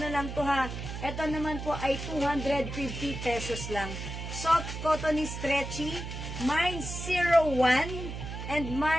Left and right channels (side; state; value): right; noise; hum, 7 dB below the sound